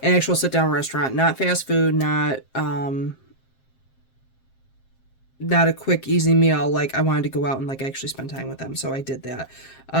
an actual sit-down restaurant, not fast food, not a quick, easy meal. Like, I wanted to go out and actually spend time with them, so I did that.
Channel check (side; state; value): right; late; 7.5 ms